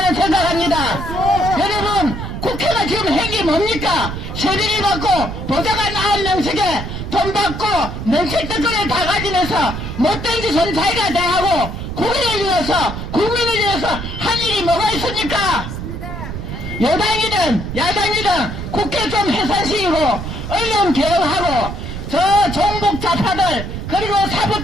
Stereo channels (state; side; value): noise; right; rumble, 7 dB below the sound